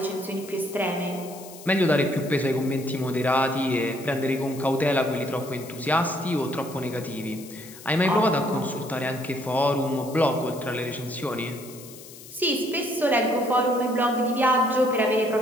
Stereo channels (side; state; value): left; noise; hiss, 17 dB below the sound